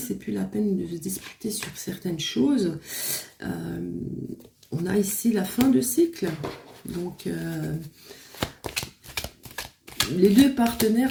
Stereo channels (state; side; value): identical; both; correlation 1.00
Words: plus la peine de se disputer sur certaines choses. On a ici la fin de cycle, donc les deux